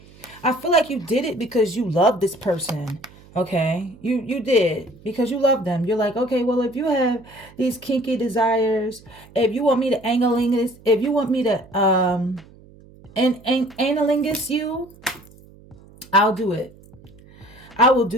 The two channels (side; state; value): right; noise; hum, 24 dB below the sound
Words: I feel like you did it because you love this person. Okay, you did because you love them. You're like, okay, well, if you have these kinky desires, if you want me to analingus, if you want me to analingus you, I'll do it. I will